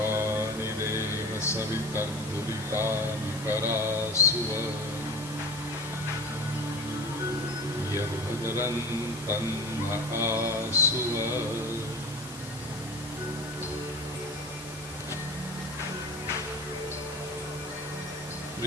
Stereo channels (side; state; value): left; noise; hiss, 14 dB below the sound